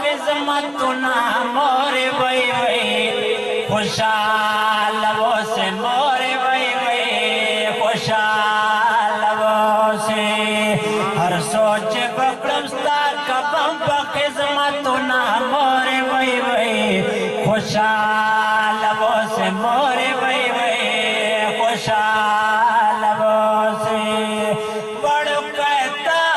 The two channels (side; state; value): both; identical; correlation 1.00